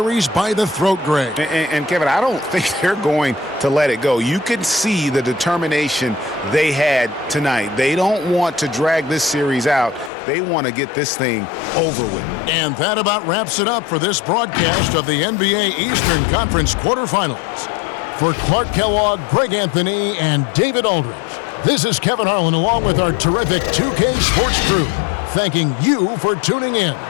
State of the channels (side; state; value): right; drops out; at 10.1 s